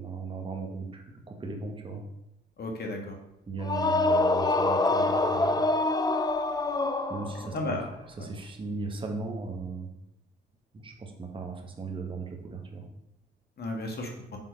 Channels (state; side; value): normal; both; correlation 0.53